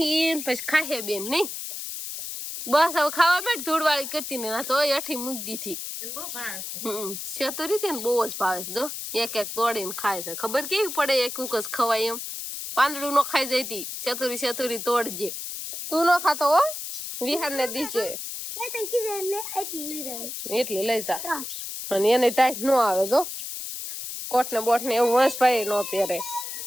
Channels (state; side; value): noise; left; hiss, 7 dB below the sound